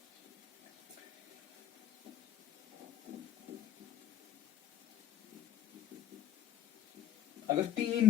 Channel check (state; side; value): quieter; right; 10.8 dB